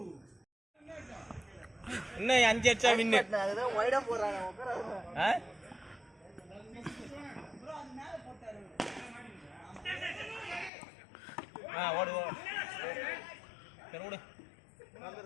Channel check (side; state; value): right; drops out; at 10.7 s